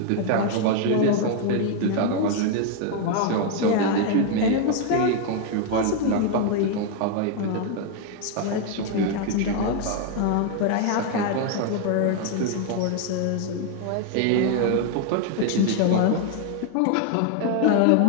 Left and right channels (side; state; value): both; different; correlation 0.00